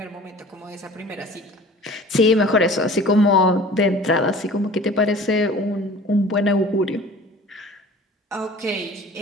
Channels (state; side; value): normal; both; correlation 0.44